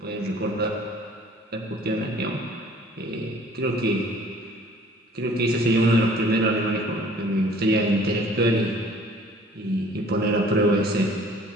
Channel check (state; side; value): normal; both; correlation 0.53